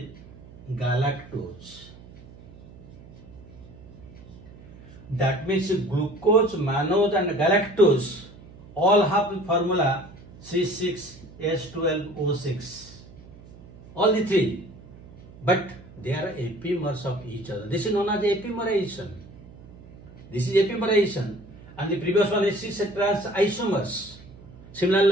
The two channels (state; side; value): noise; right; hum, 19 dB below the sound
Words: galactose. That means glucose, mannose and galactose all have the formula C6H12O6. All the three. But they are epimers of each other. This is known as epimerization. This is epimerization. And the previous one is cis trans isomers. Similarly,